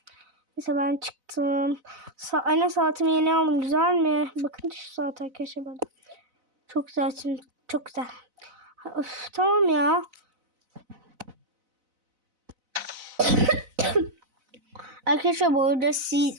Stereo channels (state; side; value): late; left; 4.0 ms